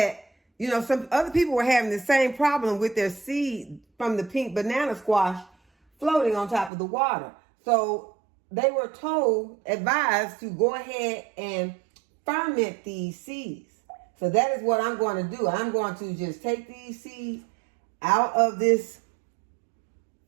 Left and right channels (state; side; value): drops out; left; at 6.7 s